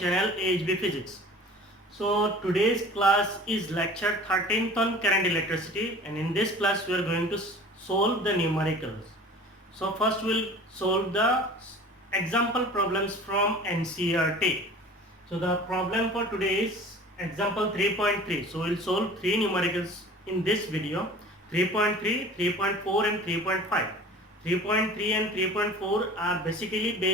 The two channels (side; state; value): both; normal; correlation 0.43